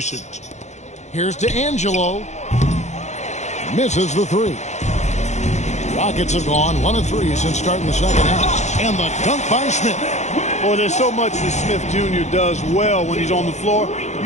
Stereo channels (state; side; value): late; right; 0.33 ms